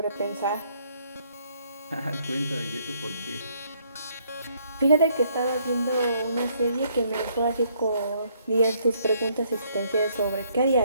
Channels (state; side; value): inverted; both; correlation -0.68